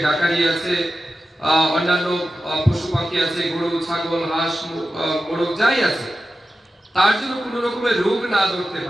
ডাকারি আছে, অন্যান্য পশু পাখি আছে, গরু, ছাগল, হাঁস, মোরগ যাই আছে, তার জন্য কোনো রকমের রোগ না ধরতে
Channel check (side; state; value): both; normal; correlation 0.92